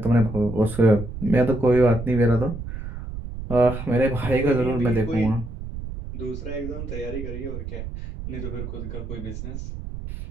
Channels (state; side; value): noise; right; rumble, 8 dB below the sound